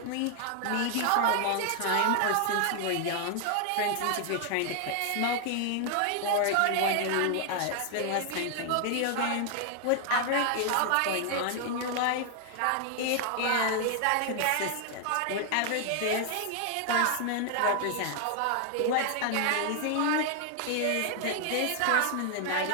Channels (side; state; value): both; different; correlation 0.00